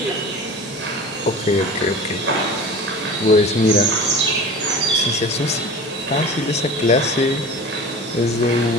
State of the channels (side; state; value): both; normal; correlation 0.36